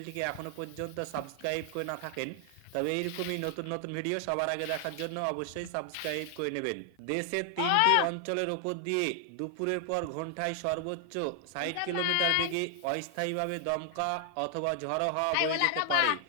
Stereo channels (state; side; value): different; both; correlation 0.00